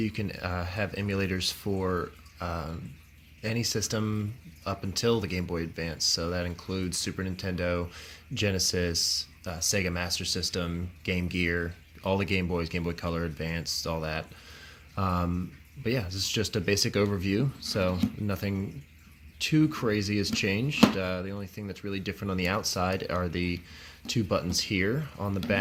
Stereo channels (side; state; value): both; identical; correlation 1.00